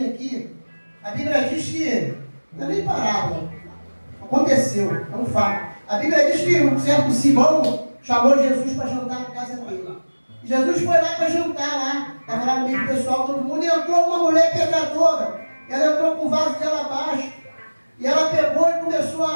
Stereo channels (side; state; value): both; inverted; correlation -1.00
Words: aqui. A Bíblia diz que, não é nem parábola, aconteceu, é um fato. A Bíblia diz que um certo Simão chamou Jesus para jantar na casa dele. E Jesus foi lá para jantar lá, estava lá no meio do pessoal, todo mundo, e entrou uma mulher pecadora. Ela entrou com um vaso de alabastro, e ela pegou e começou